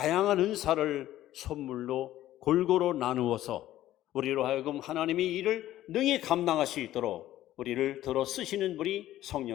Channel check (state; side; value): quieter; right; 13.8 dB